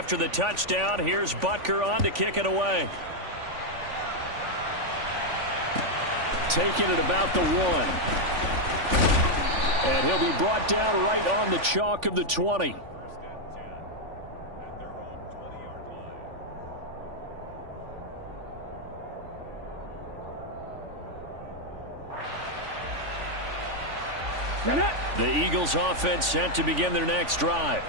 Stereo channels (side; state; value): left; late; 3.5 ms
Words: the touchdown, here's Butker on to kick it away. Taking it about the 1. And he'll be brought down right on the chalk of the 20. The Eagles offense set to begin their next drive.